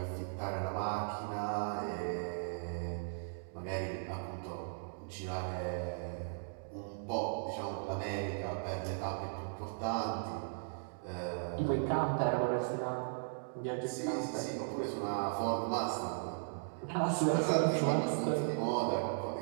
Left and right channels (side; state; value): left; silent; digital silence